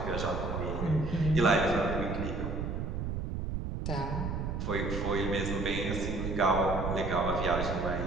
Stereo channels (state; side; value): noise; right; rumble, 3 dB below the sound